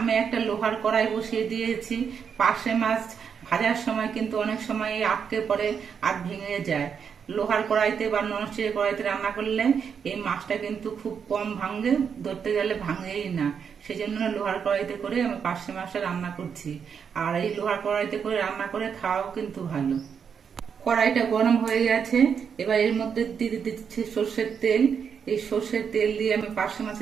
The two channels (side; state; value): left; quieter; 6.9 dB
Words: একটা লোহার কড়াই বসিয়ে দিয়েছি। পার্শে মাছ ভাজার সময় কিন্তু অনেক সময় আটকে পড়ে আর ভেঙে যায়। লোহার কড়াইতে বা ননস্টিকের কড়াইতে রান্না করলে এই মাছটা কিন্তু খুব কম ভাঙে, ধরতে গেলে ভাঙেই না। সেই জন্য লোহার কড়াইতে করে আমি পার্শে মাছটা রান্না করছি। আর এই লোহার কড়াইতে করে রান্না করে খাওয়াও কিন্তু ভালো। কড়াইটা গরম হয়ে গেছে। এবার এর মধ্যে দিয়ে দিচ্ছি সর্ষের তেল। এই সর্ষের তেল দিয়ে আমি পার্শে